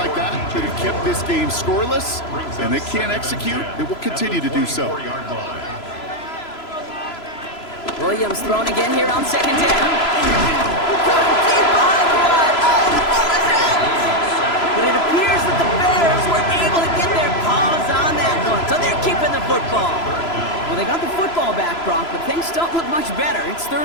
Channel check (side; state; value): right; late; 3.0 ms